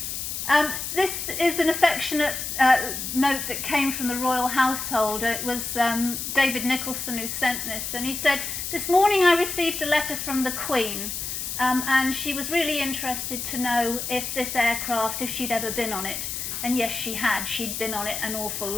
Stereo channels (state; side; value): noise; left; hiss, 4 dB below the sound